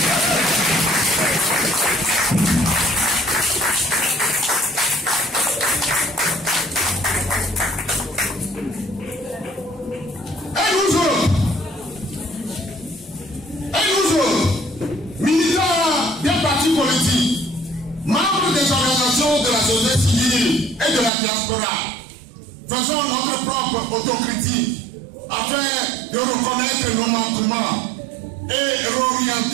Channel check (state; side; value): drops out; left; at 21.1 s